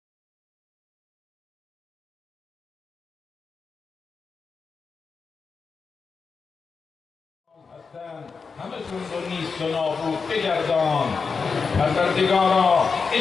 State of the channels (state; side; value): quieter; right; 5.1 dB